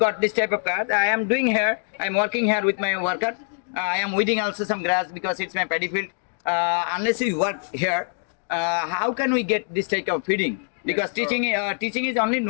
this type of card. I am doing here. I am working here with my worker. I am weeding also some grass because it's my paddy field. Unless we work here, how can we get this type of feeding? Because teaching is only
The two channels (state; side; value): silent; right; 63 dB below the other